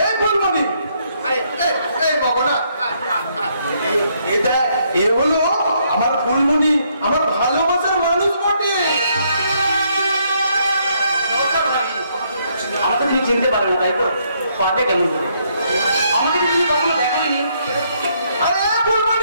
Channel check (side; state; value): both; inverted; correlation -0.72